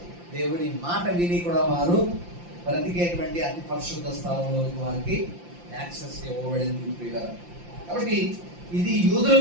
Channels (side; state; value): left; late; 5.8 ms